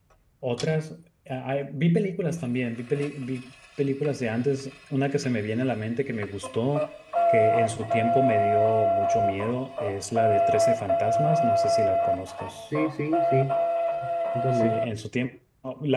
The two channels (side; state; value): both; identical; correlation 1.00